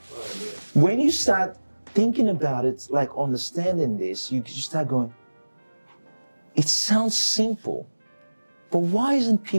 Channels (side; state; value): both; inverted; correlation -1.00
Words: When you start thinking about it, like understanding this, you start going, it sounds simple, but why isn't